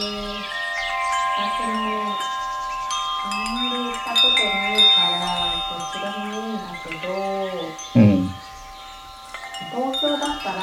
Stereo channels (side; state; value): both; identical; correlation 1.00